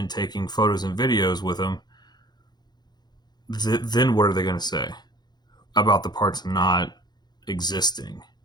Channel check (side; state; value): right; late; 0.20 ms